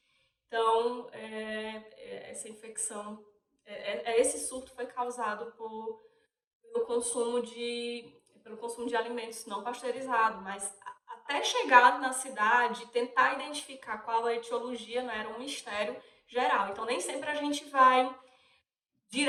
Então, essa infecção, esse surto foi causado pelo consumo de alimentos não pasteurizados, mas até chegar na cidade, tentar identificar qual a etiologia, né, era um mistério geral. Então, nem sempre a gente vai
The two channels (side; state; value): both; identical; correlation 1.00